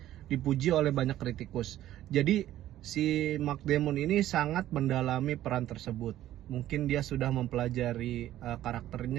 dipuji oleh banyak kritikus. Jadi si Matt Damon ini sangat mendalami peran tersebut. Mungkin dia sudah mempelajari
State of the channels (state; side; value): quieter; left; 13.2 dB